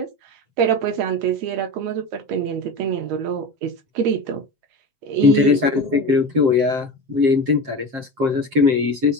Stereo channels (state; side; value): late; left; 7.6 ms